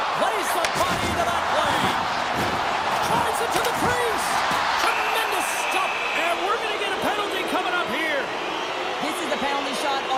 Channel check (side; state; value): both; identical; correlation 1.00